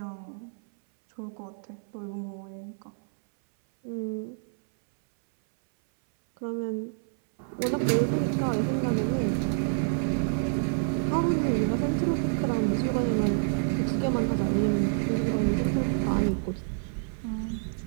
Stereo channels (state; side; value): silent; left; 59 dB below the other